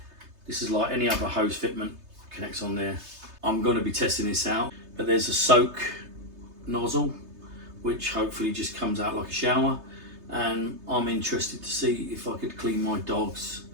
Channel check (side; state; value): left; late; 3.3 ms